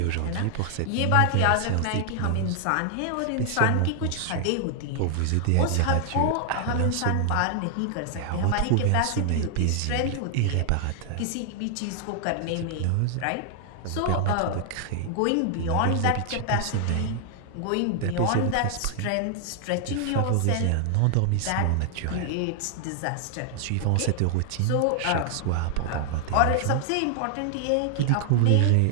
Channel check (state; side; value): different; both; correlation 0.00